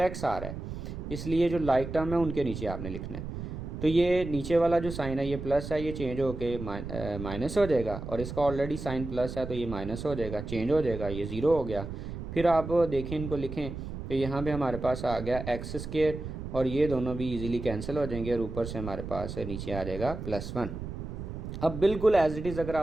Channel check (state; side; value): noise; right; rumble, 8 dB below the sound